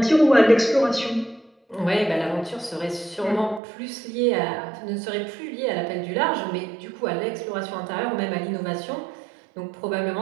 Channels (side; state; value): left; drops out; at 3.6 s